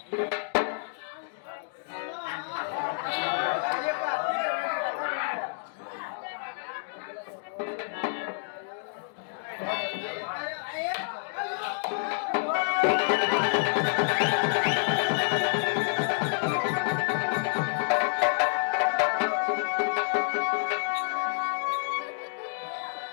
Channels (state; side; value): silent; right; digital silence